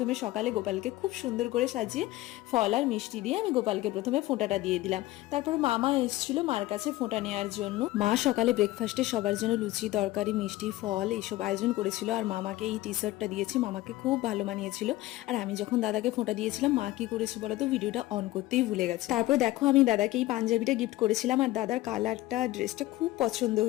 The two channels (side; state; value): right; quieter; 17.3 dB